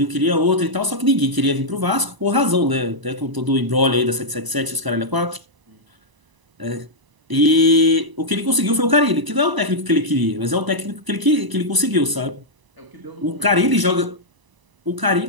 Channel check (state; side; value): late; left; 1.0 ms